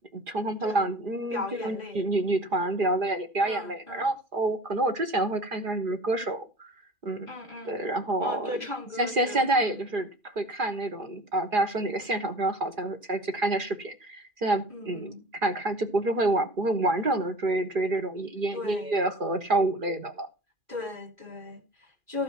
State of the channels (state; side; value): late; left; 2.4 ms